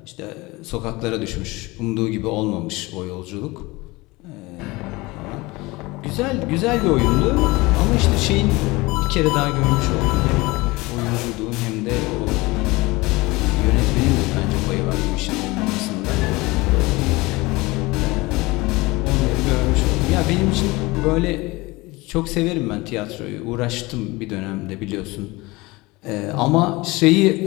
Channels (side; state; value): right; quieter; 22.4 dB